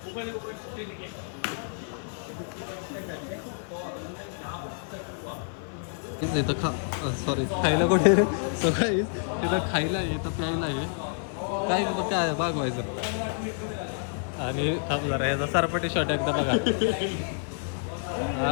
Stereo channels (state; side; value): silent; right; digital silence